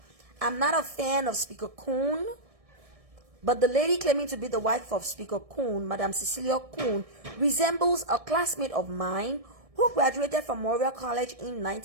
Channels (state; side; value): late; left; 1.6 ms